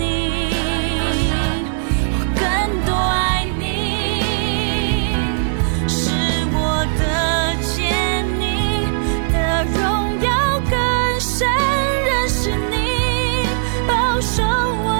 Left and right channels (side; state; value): left; silent; digital silence